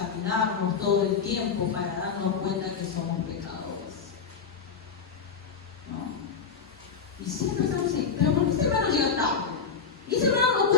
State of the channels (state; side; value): quieter; right; 5.9 dB